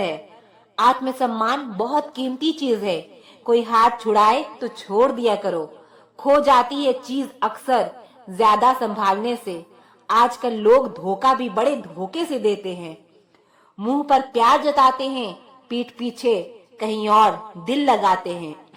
आत्मसम्मान बहुत कीमती चीज है। कोई हाथ छुड़ाए तो छोड़ दिया करो। खो जाती है चीज अक्सर ज्यादा संभालने से। आजकल लोग धोखा भी बड़े धोखे से देते हैं। मुंह पर प्यार जताते हैं, पीठ पीछे कहीं और दिल लगाते हैं।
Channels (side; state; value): both; identical; correlation 1.00